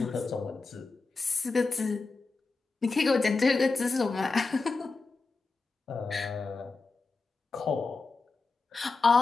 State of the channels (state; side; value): quieter; right; 4.0 dB